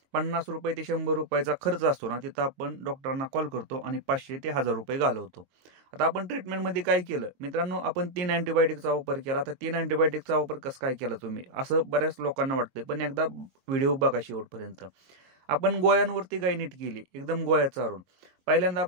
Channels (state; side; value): late; left; 22 ms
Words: ₹50 ते ₹100चा खर्च असतो ना, तिथं आपण डॉक्टरांना कॉल करतो आणि ₹500 ते ₹1000 घालवतो. आता आपण ट्रीटमेंटमध्ये काय केलं? मित्रांनो, आपण 3 अँटिबायोटिकचा वापर केला. आता 3 अँटिबायोटिकचा वापर कसं काय केला तुम्ही? असं बऱ्याच लोकांना वाटतंय. पण एकदा व्हिडिओ बघा शेवटपर्यंत. आपण गोळ्यांवरती गाय नीट केली, एकदम गोळ्या चारून. पहिल्यांदा